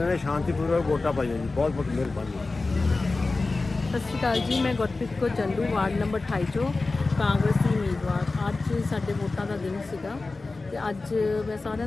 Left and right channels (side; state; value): right; quieter; 3.6 dB